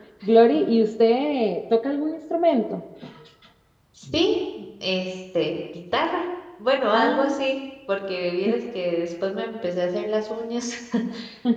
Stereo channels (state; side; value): identical; both; correlation 1.00